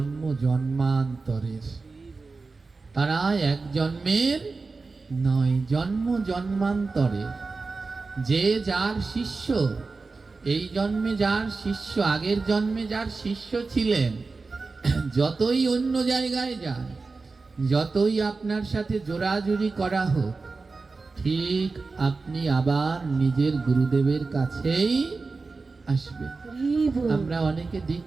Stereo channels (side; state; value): left; quieter; 4.0 dB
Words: জন্মান্তরের। তারা এক জন্মের নয়, জন্ম জন্মান্তরে। যে যার শিষ্য, এই জন্মে যার শিষ্য, আগের জন্মে যার শিষ্য ছিলেন, যতই অন্য জায়গায় যান, যতই আপনার সাথে জোরাজুরি করা হোক, ঠিক আপনি আবার নিজের গুরুদেবের কাছেই আসবেন। আমরা অনেকে